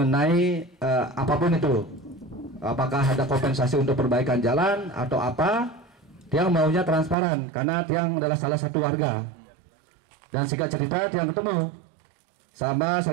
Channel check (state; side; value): drops out; left; at 7.2 s